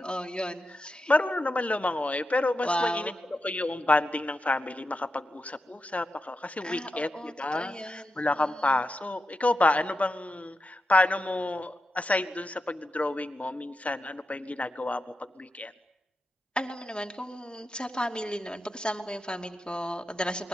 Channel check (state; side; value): normal; both; correlation 0.88